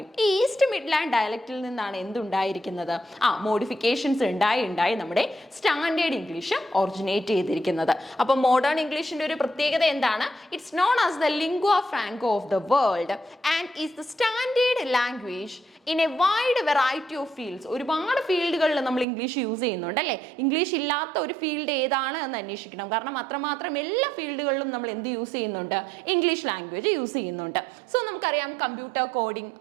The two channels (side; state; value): left; drops out; at 19.1 s